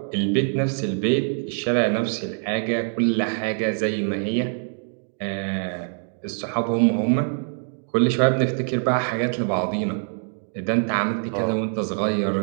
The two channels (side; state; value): left; silent; 63 dB below the other